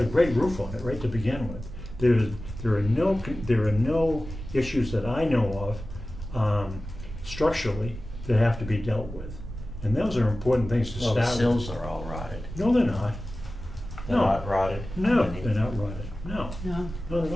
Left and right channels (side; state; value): right; noise; rumble, 10 dB below the sound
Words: a great roof on it right to begin with. There are no issues that I know of structurally that have to be dealt with, and those are important things to start with. The sills are all rotted. No, they're not. They're not rotted? No, they're not rotted. No, not at